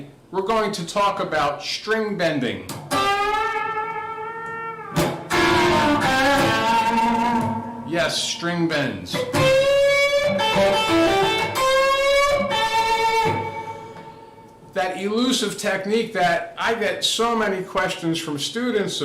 we're going to talk about string bending. Yes, string bends. That elusive technique that I get so many questions from students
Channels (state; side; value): identical; both; correlation 1.00